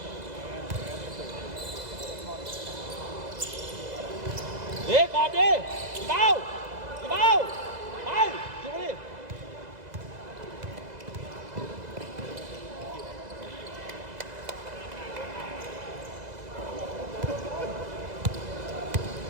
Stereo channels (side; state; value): left; late; 2.0 ms